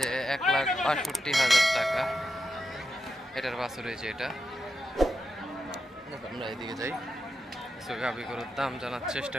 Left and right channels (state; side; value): normal; both; correlation 0.87